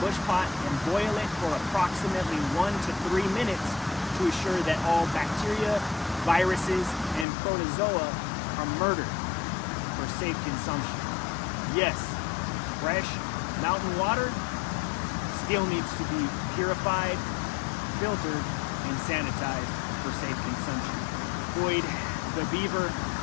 bush pot and boil it for approximately 1 to 3 minutes to assure that all bacteria, viruses, and protozoa are murdered for safe consumption. Yes, fresh mountain water still needs to be purified, filtered, and sanitized for safe consumption. Avoid the beaver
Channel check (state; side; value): drops out; right; at 7.2 s